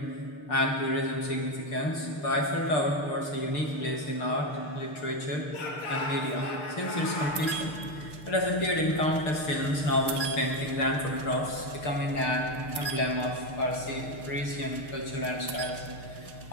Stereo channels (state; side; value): late; right; 6.7 ms